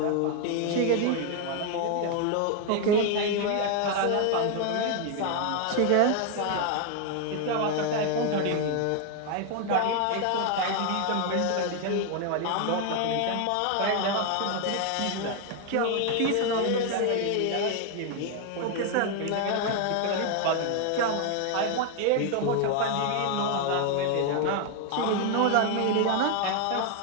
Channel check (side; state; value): both; different; correlation 0.00